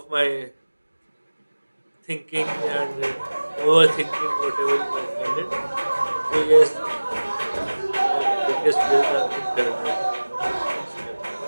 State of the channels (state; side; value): inverted; both; correlation -1.00